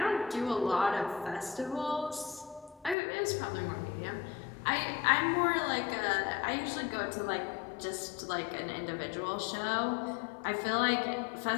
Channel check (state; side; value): drops out; right; at 3.0 s